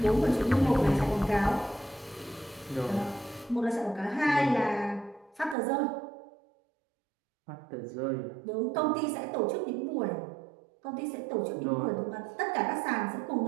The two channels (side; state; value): left; drops out; at 5.6 s